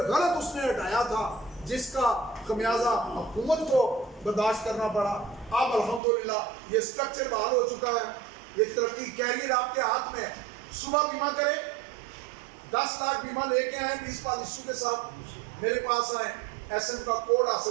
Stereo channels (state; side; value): drops out; left; at 6.0 s